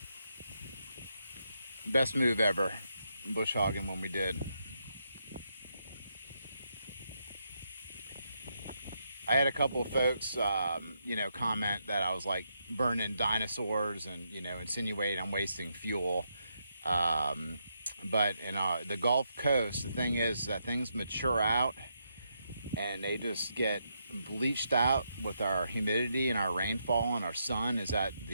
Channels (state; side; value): inverted; both; correlation -0.80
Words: Best move ever, bush hogging when we did. I had a couple of folks, comment that I was like burning dinosaurs and, insinuate I'm wasting fuel. But in the Gulf Coast, the thing is that things mature out and they just get bleached out with our humidity and our rainfall and our sun. Is that